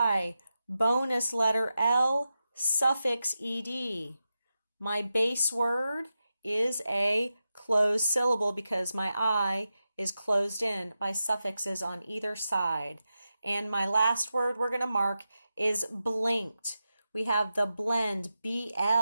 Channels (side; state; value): both; inverted; correlation -0.90